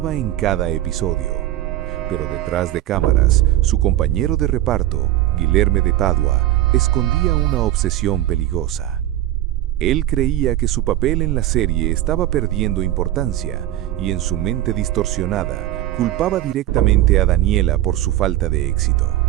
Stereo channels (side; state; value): left; quieter; 14.1 dB